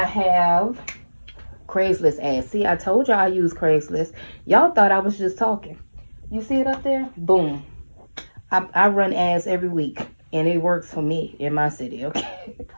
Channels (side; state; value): both; inverted; correlation -1.00